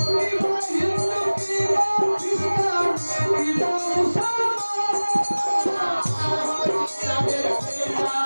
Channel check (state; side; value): inverted; both; correlation -1.00